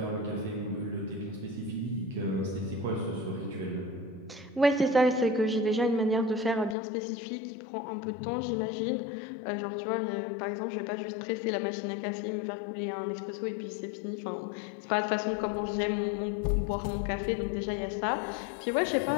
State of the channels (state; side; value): drops out; right; at 6.8 s